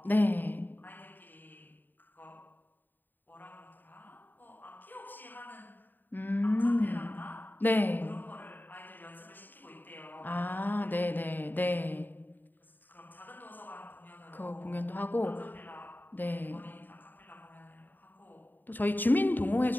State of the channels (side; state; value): right; late; 0.090 ms